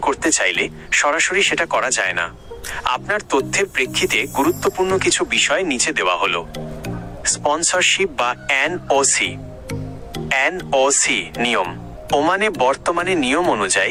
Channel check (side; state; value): both; identical; correlation 1.00